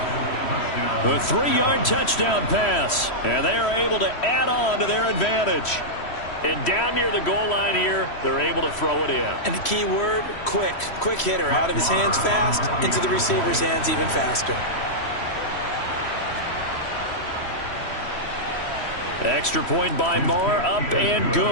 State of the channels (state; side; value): late; right; 3.1 ms